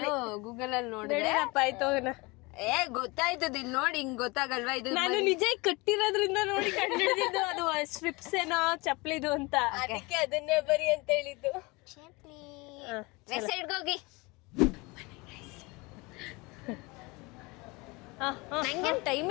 ಗೂಗಲ್ ಅಲ್ಲಿ ನೋಡಿದ್ರೆ ಆಯ್ತು. ಗೊತ್ತಾಯ್ತದ. ಇಲ್ಲಿ ನೋಡಿ, ಹಿಂಗ್ ಗೊತ್ತಾಗಲ್ವಾ? ಇದು ನಾನು ನಿಜ ಕಟ್ಟಿರೋದ್ರಿಂದ ನೋಡಿ ಕಂಡಿಡಿದ್ದು. ಅದು ಸ್ಟ್ರಿಪ್ಸ್ ಏನೋ ಚಪ್ಲಿದು ಅಂತ, ಅದಕ್ಕೆ ಅದನ್ನೇ ಬರಿ ಅಂತ ಹೇಳಿದ್ದು. ವೆಬ್ಸೈಟ್ಗೆ ಹೋಗಿ ನಂಗೇನು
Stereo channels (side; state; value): right; quieter; 25.3 dB